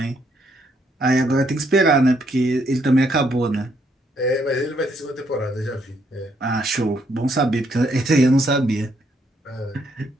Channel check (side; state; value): both; normal; correlation 0.73